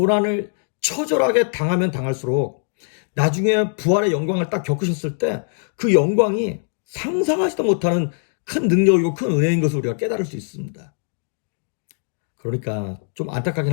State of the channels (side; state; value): right; silent; digital silence